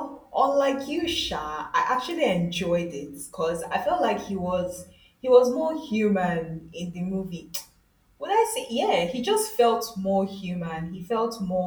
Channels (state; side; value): identical; both; correlation 1.00